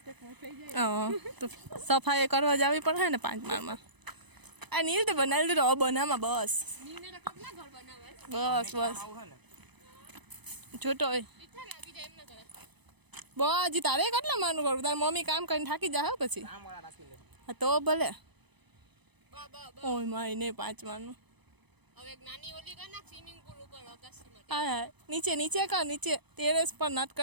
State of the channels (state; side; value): late; left; 0.99 ms